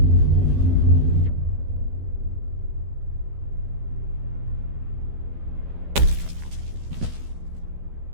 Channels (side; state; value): left; late; 12 ms